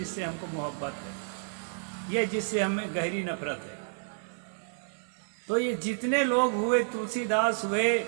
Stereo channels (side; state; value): left; silent; 57 dB below the other